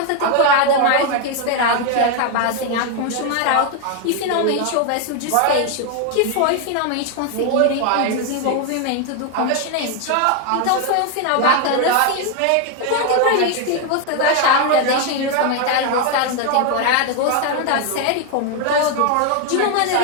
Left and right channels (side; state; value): both; different; correlation 0.01